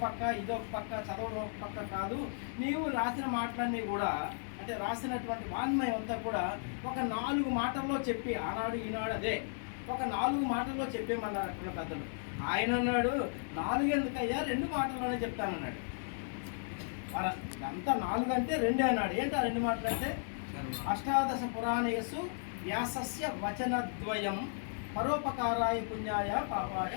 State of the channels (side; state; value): right; silent; digital silence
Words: పక్క, ఇదొక పక్క, చదవడం ఒక పక్క కాదు, నీవు రాసిన మాటలన్నీ కూడా అంటే రాసినటువంటి వాన్మయం అంతా కూడా ఒక 4 మాటల్లో చెప్పి, ఆనాడు ఈనాడు అదే ఒక 4 మాటల్లో చెప్పేమన్నారు అక్కడ పెద్దలు. ఆయన అన్నాడు 4 ఎందుకయ్యా, 2 మాటల్లోనే చెప్తానన్నాడు. అంతా 4 అంటే 2 అన్నాడు. ఏంటి ఆ 2 మాటలు అంటే అష్టాదశ పురాణేషు వ్యాసస్య వచనద్వయం పరోపకారాయ పుణ్యాయ పాపాయ